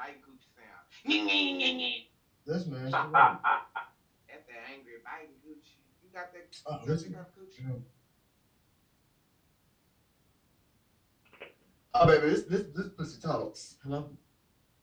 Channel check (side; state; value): both; identical; correlation 1.00